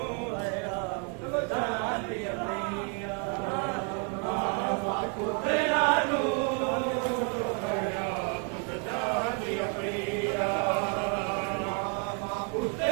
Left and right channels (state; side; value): quieter; left; 38.9 dB